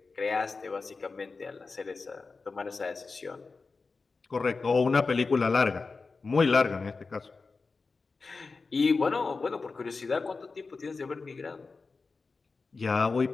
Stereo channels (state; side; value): quieter; right; 4.2 dB